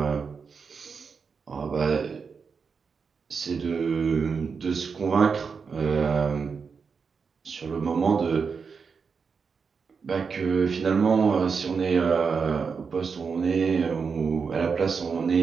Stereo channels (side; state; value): left; quieter; 5.6 dB